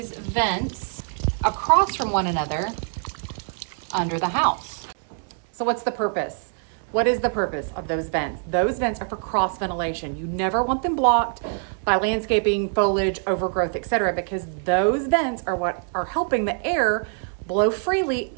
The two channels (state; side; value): silent; left; 62 dB below the other